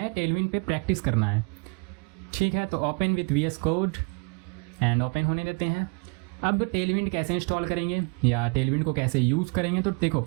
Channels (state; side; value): quieter; left; 32.3 dB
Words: टेलविंड पे प्रैक्टिस करना है। ठीक है, तो open with VS Code and open होने देते हैं। अब टेलविंड कैसे इंस्टॉल करेंगे या टेलविंड को कैसे यूज़ करेंगे? तो देखो